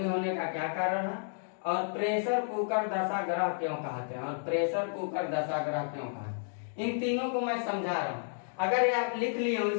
होने का क्या कारण है। और प्रेशर कुकर दशा ग्रह क्यों कहते हैं, और प्रेशर कुकर दशा ग्रह क्यों कहते हैं। इन तीनों को मैं समझा रहा हूं। अगर ये आप लिख लिए हो,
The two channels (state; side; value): silent; right; digital silence